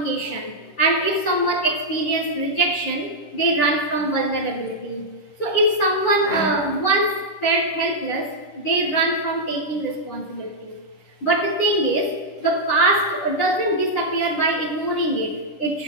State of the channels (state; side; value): late; right; 10 ms